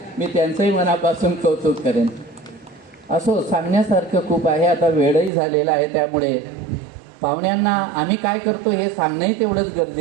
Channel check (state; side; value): drops out; left; at 5.3 s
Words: मी त्यांचंही मनापासून कौतुक करेन. असो, सांगण्यासारखं खूप आहे. आता वेळही झालेला आहे, त्यामुळे पाहुण्यांना आम्ही काय करतो हे सांगणंही तेवढंच